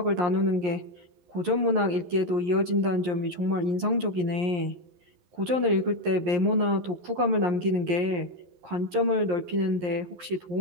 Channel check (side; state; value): left; late; 11 ms